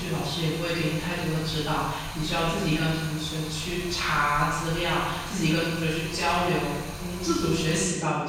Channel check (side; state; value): both; identical; correlation 1.00